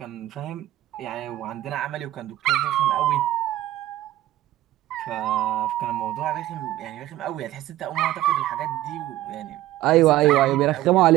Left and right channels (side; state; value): left; quieter; 14.8 dB